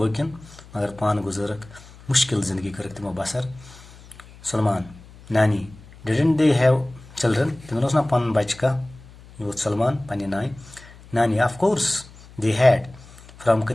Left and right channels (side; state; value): left; noise; hum, 21 dB below the sound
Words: Magar Pan Guzarak, Mushkil Zindagi Karakimo Basar. Salman, Nani, didn't they have children? Timosna Pan Bachka, you Salman, Paninai. Nani, of course, they had. From